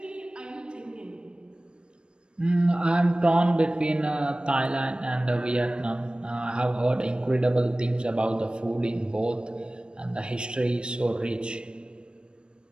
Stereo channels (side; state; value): left; late; 0.054 ms